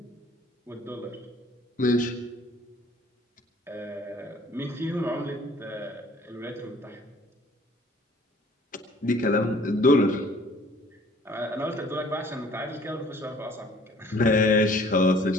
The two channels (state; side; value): normal; both; correlation 0.55